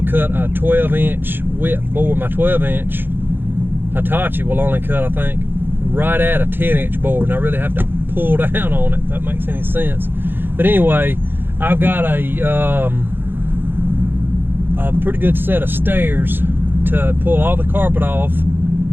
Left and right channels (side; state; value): left; late; 0.099 ms